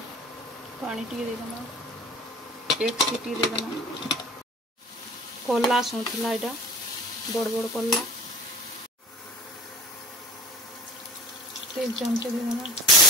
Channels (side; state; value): both; normal; correlation 0.39